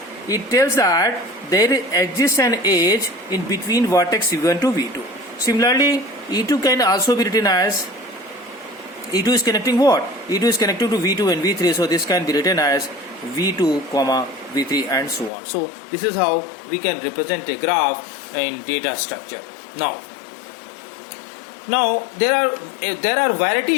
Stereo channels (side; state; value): right; drops out; at 15.3 s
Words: It tells that there exists an edge in between vertex V1 to V2. Similarly, E2 can also be written as, E2 is connecting what? E2 is connected to V2 and V3, so this can be written as V2 comma V3 and so on. So this is how we can represent a graph in data structure. Now there are